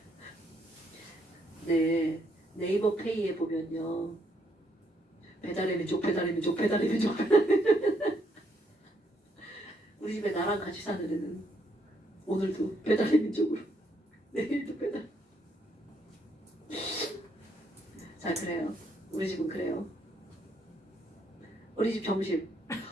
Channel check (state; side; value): normal; both; correlation 0.73